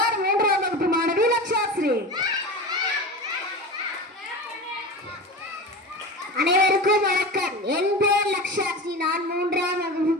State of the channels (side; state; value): both; normal; correlation 0.28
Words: 3ஆம் வகுப்பு மாணவி லக்ஷாஸ்ரீ. அனைவருக்கும் வணக்கம். என் பெயர் லக்ஷாஸ்ரீ. நான் 3ஆம் வகுப்பு